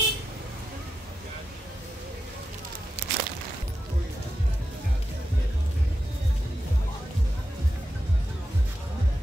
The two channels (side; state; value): both; normal; correlation 0.88